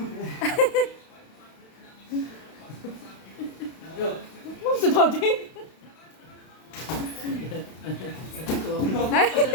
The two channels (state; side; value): late; right; 32 ms